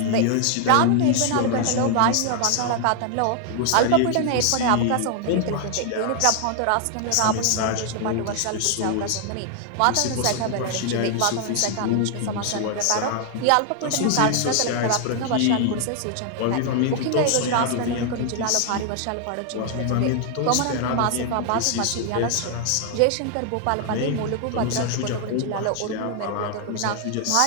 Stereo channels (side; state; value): both; different; correlation 0.00